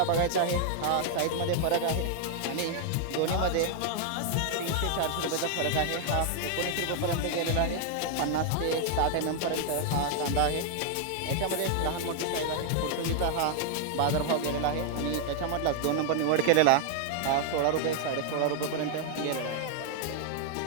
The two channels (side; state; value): both; different; correlation 0.00